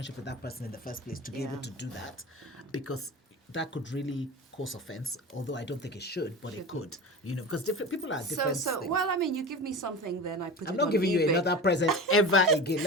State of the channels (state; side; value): normal; both; correlation 0.30